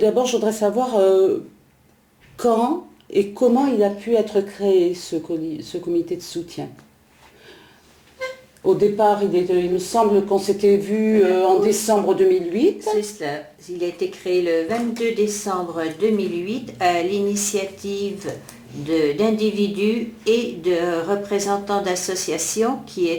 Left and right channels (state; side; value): identical; both; correlation 1.00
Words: je voudrais savoir quand et comment il a pu être créé ce comité de soutien. Au départ, il me semble qu'on s'était vu en décembre 2008. C'est cela. Il a été créé le 22 décembre 2008 à l'initiative d'individus et de représentants d'associations qui